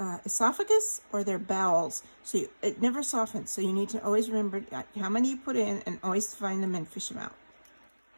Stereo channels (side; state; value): both; inverted; correlation -1.00